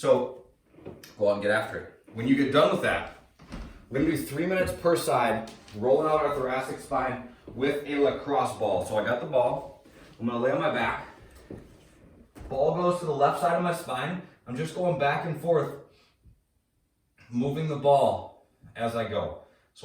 go out and get after it. When you get done with that, we're gonna do 3 minutes per side, rolling out our thoracic spine with a lacrosse ball. So I got the ball, I'm gonna lay on my back. Ball goes to the left side of my spine. I'm just going back and forth, moving the ball as I go.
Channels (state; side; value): identical; both; correlation 1.00